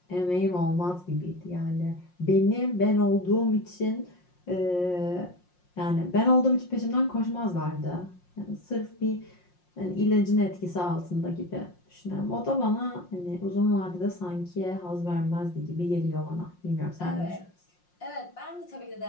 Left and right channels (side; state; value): right; late; 5.6 ms